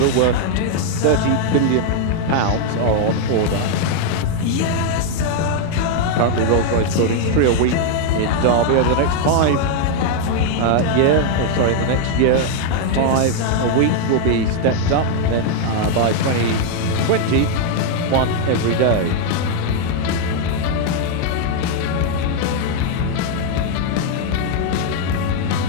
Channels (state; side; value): different; both; correlation 0.00